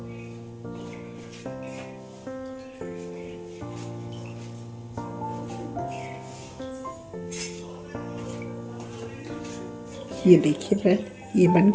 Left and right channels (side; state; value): both; identical; correlation 1.00